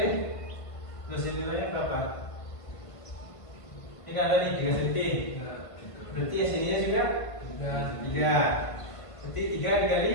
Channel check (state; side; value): late; right; 1.5 ms